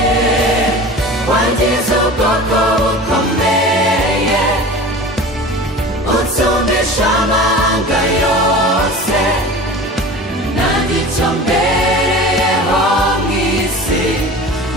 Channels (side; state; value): both; normal; correlation 0.36